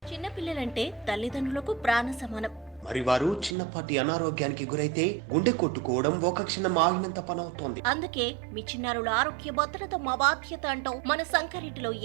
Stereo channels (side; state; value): left; drops out; at 3.6 s